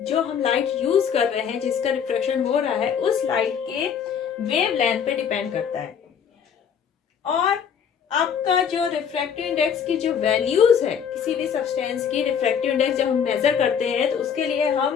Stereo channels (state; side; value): quieter; right; 7.6 dB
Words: जो हम लाइट यूज कर रहे हैं, जिसका रिफ्लेक्शन हो रहा है, उस लाइट के वेवलेंथ पे डिपेंड करता है। और आपका जो रिफ्रैक्टिव इंडेक्स की जो वैल्यूज है किसी भी सब्सटेंस की, रिफ्रैक्टिव इंडेक्स जब हम मेजर करते हैं तो उसके लिए